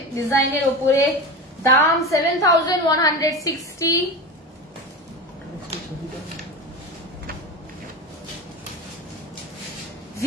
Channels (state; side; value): normal; both; correlation 0.26